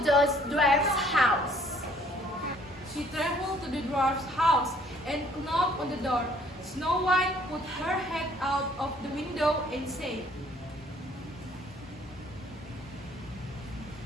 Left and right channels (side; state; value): both; normal; correlation 0.60